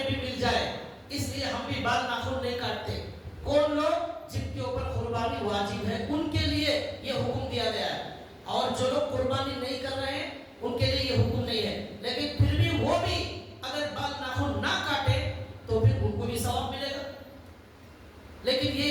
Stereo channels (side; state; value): both; identical; correlation 1.00